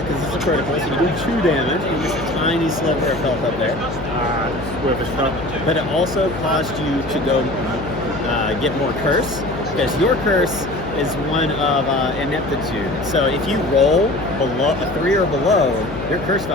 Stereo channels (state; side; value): noise; left; hum, 10 dB below the sound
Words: because it's a critical, so you do 2 damage. You just a tiny sliver of health up there. It's worth a shot. But it also caused you to go get more curse, because your curse is one of ineptitude. So if you roll below a 3 or below, your curse